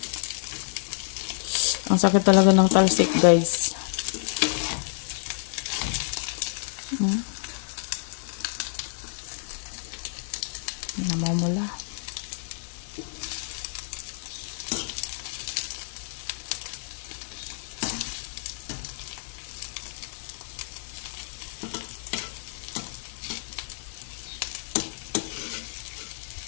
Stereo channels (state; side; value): silent; right; 59 dB below the other